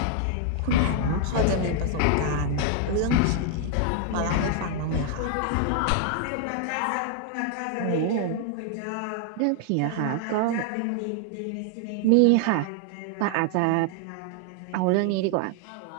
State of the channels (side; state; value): both; different; correlation 0.00